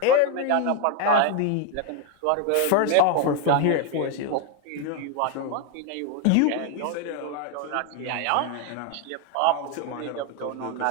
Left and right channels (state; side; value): different; both; correlation 0.01